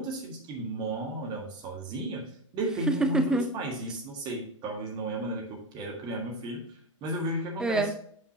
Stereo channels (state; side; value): normal; both; correlation 0.20